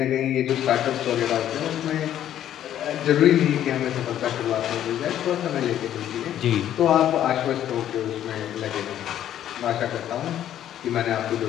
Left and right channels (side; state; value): right; quieter; 11.2 dB